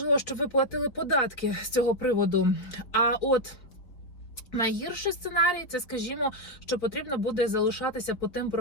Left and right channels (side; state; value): right; late; 4.3 ms